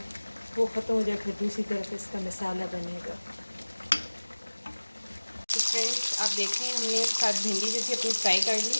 वो ख़त्म हो जाए, फिर दूसरी तरफ इसका मसाला बनेगा। तो फ्रेंड्स आप देख रहे हैं, हमने साथ भिंडी जो थी अपनी फ्राई कर ली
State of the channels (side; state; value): both; inverted; correlation -1.00